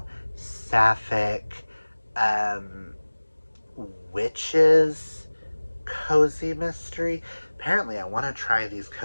sapphic, witches, cozy mystery. Apparently, I want to try these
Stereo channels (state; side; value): inverted; both; correlation -1.00